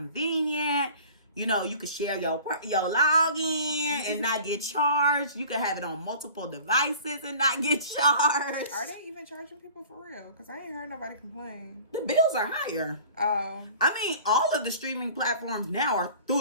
You know, you could share your login and not get charged. You could have it on multiple devices and not get charged. Are they even charging people for real? Because I ain't heard nobody complain. The bills are higher. Oh. I mean, all of the streaming platforms now are through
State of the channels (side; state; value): both; inverted; correlation -0.45